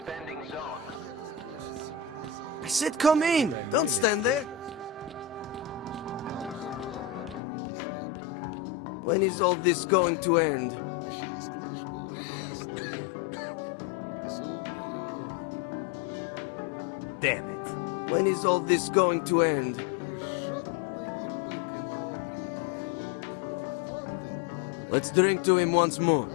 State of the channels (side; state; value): right; drops out; at 7.4 s